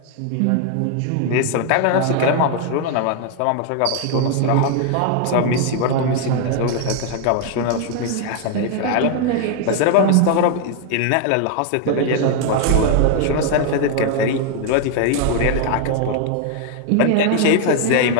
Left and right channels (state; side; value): different; both; correlation 0.00